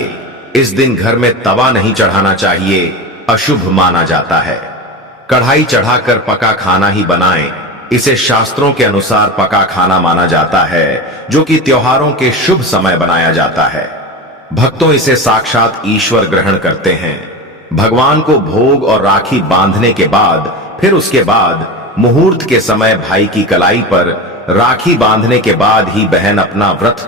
इस दिन घर में तवा नहीं चढ़ाना चाहिए, अशुभ माना जाता है। कढ़ाई चढ़ाकर पका खाना ही बनाएं। इसे शास्त्रों के अनुसार पका खाना माना जाता है, जो कि त्योहारों के शुभ समय बनाया जाता है। भक्तों, इसे साक्षात ईश्वर ग्रहण करते हैं। भगवान को भोग और राखी बांधने के बाद, फिर उसके बाद मुहूर्त के समय भाई की कलाई पर राखी बांधने के बाद ही बहन अपना व्रत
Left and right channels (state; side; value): normal; both; correlation 0.26